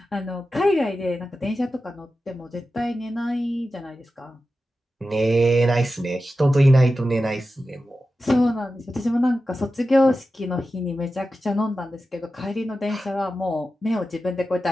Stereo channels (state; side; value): normal; both; correlation 0.92